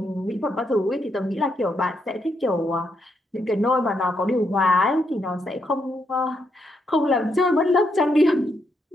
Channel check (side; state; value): both; normal; correlation 0.79